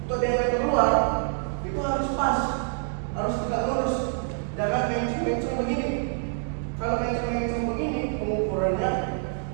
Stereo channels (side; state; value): left; silent; 61 dB below the other